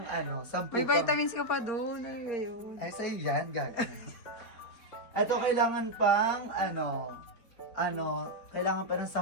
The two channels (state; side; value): late; right; 4.3 ms